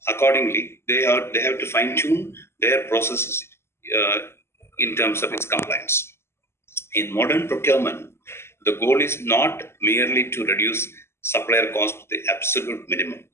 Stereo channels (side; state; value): right; late; 0.12 ms